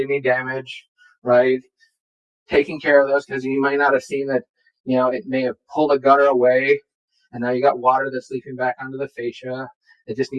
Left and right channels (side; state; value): both; identical; correlation 1.00